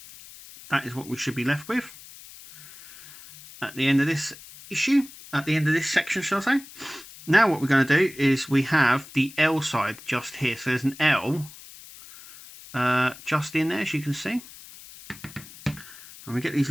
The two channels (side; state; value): left; noise; hiss, 18 dB below the sound